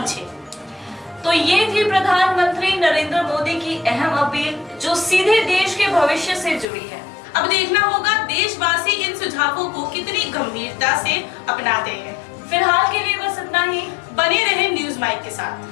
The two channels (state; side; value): drops out; right; at 6.7 s